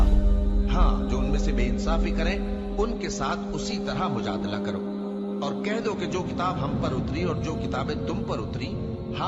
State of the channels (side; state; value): both; identical; correlation 1.00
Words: ہو۔ ہاں، جو ان میں سے بے انصافی کریں ان کے ساتھ اسی طرح مجادلہ کرو، اور کہہ دو کہ جو کتاب ہم پر اتری اور جو کتابیں تم پر اتری